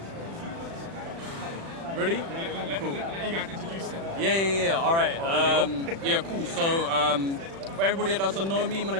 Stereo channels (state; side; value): late; left; 36 ms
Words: Ready? Cool. You guys introduce it. Yeah. Alright. Yeah, cool. So, for everybody that doesn't know me, my